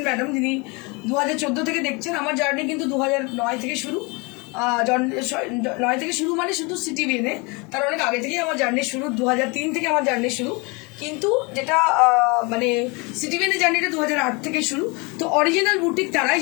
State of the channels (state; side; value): quieter; right; 28.6 dB